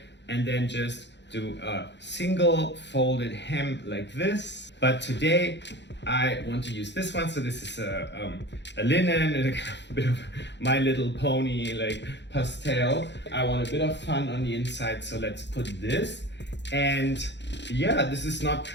and then just do a single folded hem like this. But today I want to use this one. So this is a linen, and a bit of My Little Pony like pastel. I want a bit of fun on the inside, so let's put this. And yeah, this is not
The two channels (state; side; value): late; right; 0.51 ms